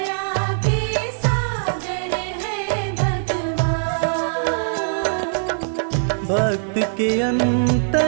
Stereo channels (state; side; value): silent; left; 63 dB below the other